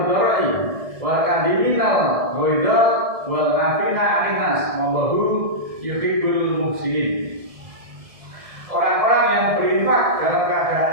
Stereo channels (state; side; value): late; left; 1.7 ms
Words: wal kadiminal ghaidha wal 'afina 'anil nas wallahu yuhibbul muhsinin. Orang-orang yang berinfak dalam keadaan